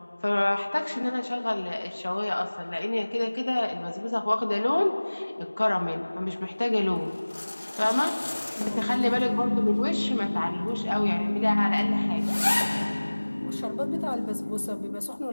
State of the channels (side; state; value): both; inverted; correlation -1.00